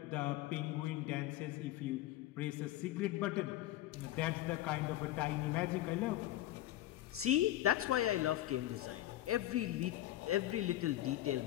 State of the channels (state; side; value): quieter; right; 14.6 dB